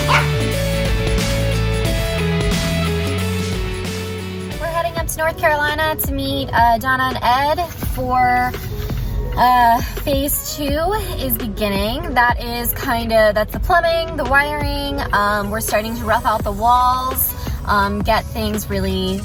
We're heading up to North Carolina to meet Donna and Ed for phase 2 is beginning. That's the plumbing, the wiring. We're starting to rough out the walls, get things really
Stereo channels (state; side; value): identical; both; correlation 1.00